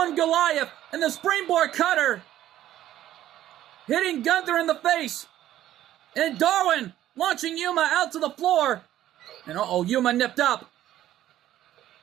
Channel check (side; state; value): left; quieter; 12.8 dB